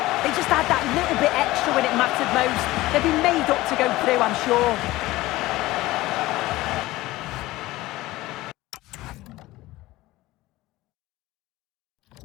They just had that little bit extra when it mattered most. They've been made up to go through, I'm sure.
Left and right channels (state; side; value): quieter; right; 18.1 dB